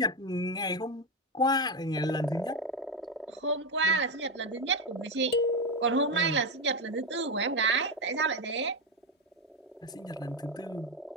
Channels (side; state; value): both; normal; correlation 0.09